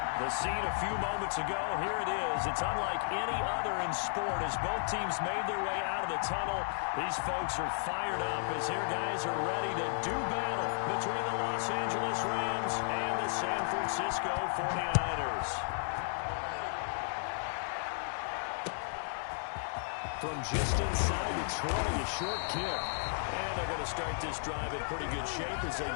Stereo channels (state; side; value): silent; right; digital silence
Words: The scene a few moments ago, here it is. It's unlike any other in sport as both teams made their way out of the tunnel. These folks are fired up as their guys are ready to do battle between the Los Angeles Rams and the San Francisco 49ers. From just inside the 20, a short kick. And they're going to start this drive in pretty good shape as they